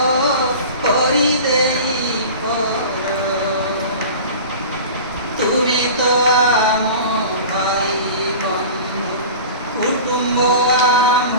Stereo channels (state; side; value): inverted; both; correlation -0.36